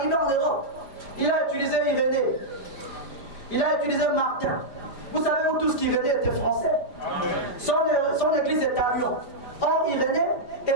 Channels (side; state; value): right; late; 5.0 ms